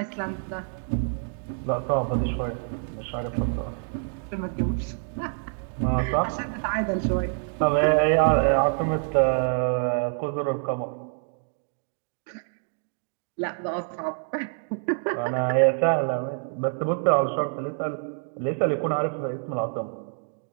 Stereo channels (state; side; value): silent; left; 58 dB below the other